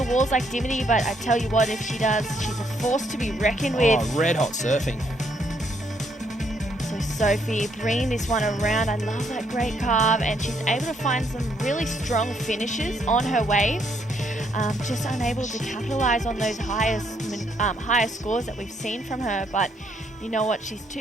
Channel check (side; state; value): both; normal; correlation 0.71